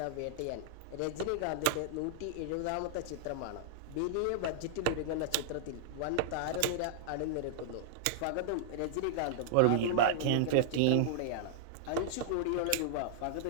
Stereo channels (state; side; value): different; both; correlation -0.01